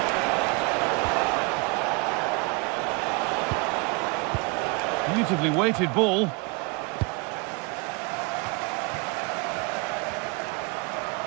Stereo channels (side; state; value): left; quieter; 29.6 dB